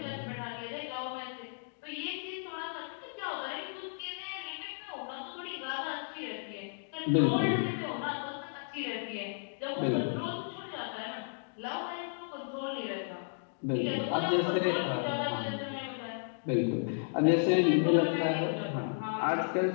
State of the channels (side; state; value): right; silent; digital silence